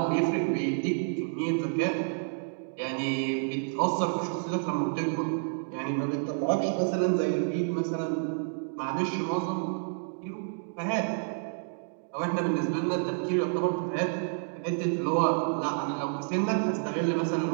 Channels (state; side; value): silent; left; digital silence